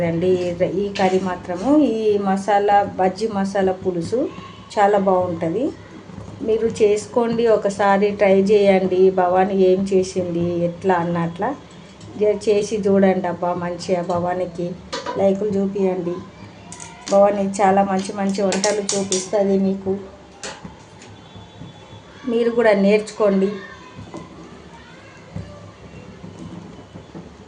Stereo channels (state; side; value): identical; both; correlation 1.00